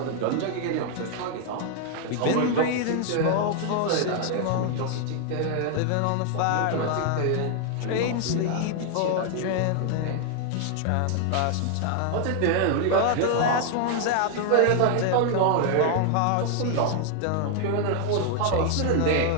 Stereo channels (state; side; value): different; both; correlation 0.00